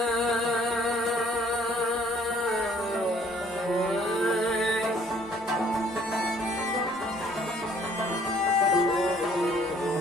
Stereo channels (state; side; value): normal; both; correlation 0.59